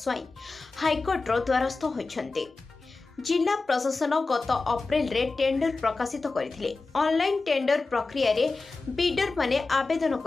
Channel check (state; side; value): quieter; right; 3.8 dB